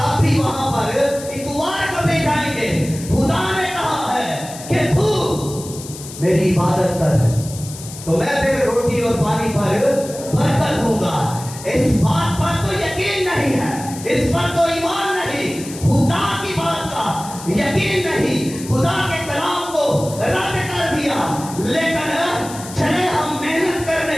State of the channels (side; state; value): left; noise; hiss, 14 dB below the sound